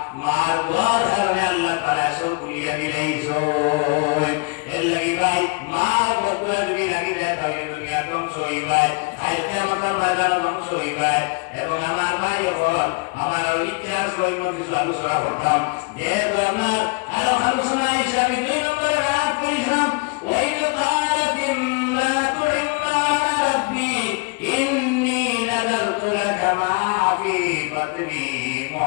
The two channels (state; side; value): quieter; right; 30.0 dB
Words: মার দোয়ার কারণে আল্লাহ তাআলা সব কুলিয়া দিলাইছো এর লাগি ভাই মার বকুলা যদি লাগি যায় তাহলে দুনিয়া ধ্বংস হইবাই আজকে আমাদের বাজার ধ্বংস হইবাই এবং আমার ভাই হল আমার ইচ্ছা সই মধ্যে আলোচনা করতাম যেহেতু আমার আরো আলোচনা হিসাবে 2 নম্বরে আয়াত পড়িলাম ওয়াইন কালাত ইমরাতু ইমরান রাব্বি ইন্নী নাযারতু লাকা মা ফি বাতনি